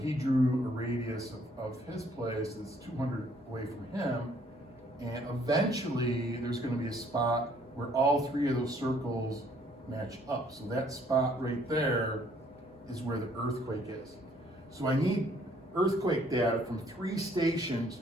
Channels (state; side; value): normal; both; correlation 0.63